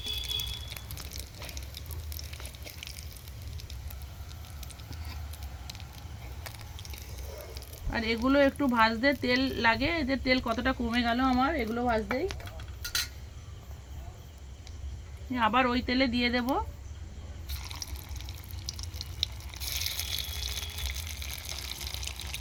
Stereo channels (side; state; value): both; identical; correlation 1.00